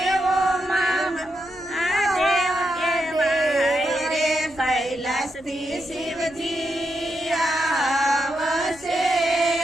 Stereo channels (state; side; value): noise; left; hum, 26 dB below the sound